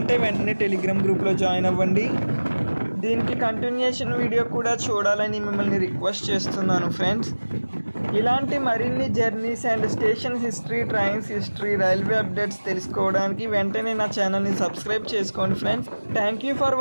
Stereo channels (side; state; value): both; inverted; correlation -1.00